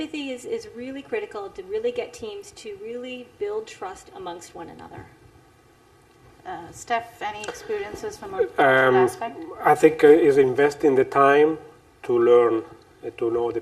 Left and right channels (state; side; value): identical; both; correlation 1.00